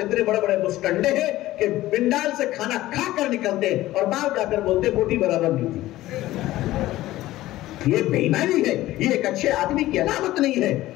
اتنے بڑے بڑے مسٹنڈے ہیں کہ پنڈال سے کھانا کھا کر نکلتے اور باہر جا کر بولتے بوٹی برابر نہیں تھی. یہ بے ایمانی ہے، یہ ایک اچھے آدمی کی علامت نہیں ہے.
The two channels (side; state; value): right; quieter; 16.0 dB